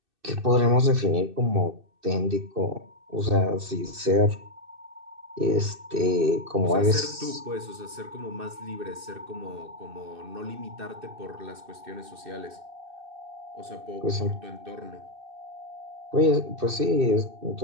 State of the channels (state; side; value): late; left; 2.6 ms